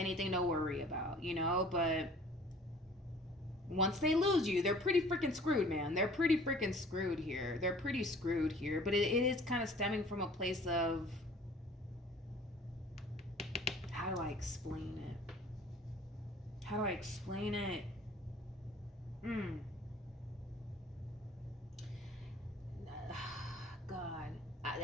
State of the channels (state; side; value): normal; both; correlation 0.50